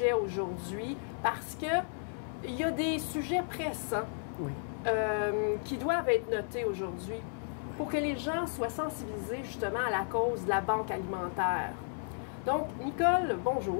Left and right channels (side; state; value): right; silent; 55 dB below the other